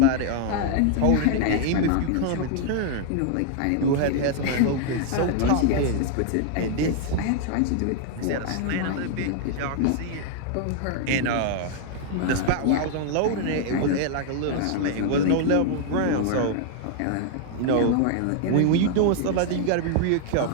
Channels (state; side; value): different; both; correlation 0.00